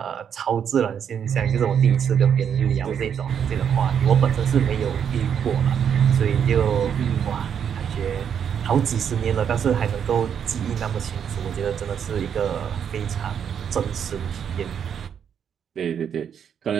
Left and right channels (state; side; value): quieter; left; 8.1 dB